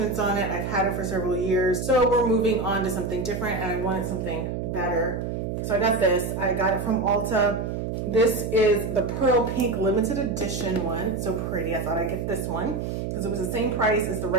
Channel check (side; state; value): right; noise; hum, 3 dB below the sound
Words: on it. I've had it for several years. So we're moving on to something different, and I wanted something better. So I got this. I got it from Ulta. This is the Pearl Pink limited edition one. It's so pretty. I thought I'd get this one because it was the same price as the